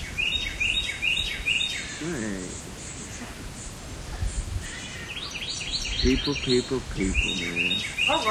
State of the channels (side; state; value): both; identical; correlation 1.00